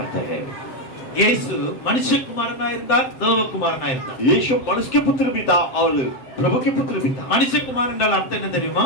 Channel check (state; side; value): late; right; 7.8 ms